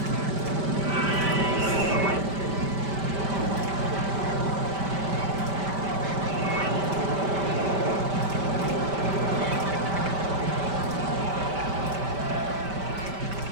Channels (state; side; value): late; left; 5.1 ms